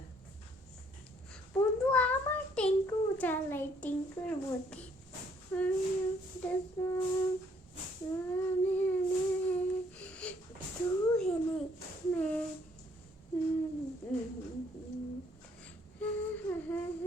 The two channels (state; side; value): normal; both; correlation 0.65